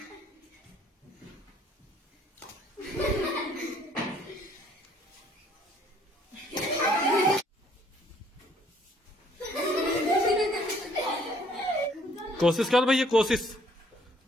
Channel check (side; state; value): both; normal; correlation 0.62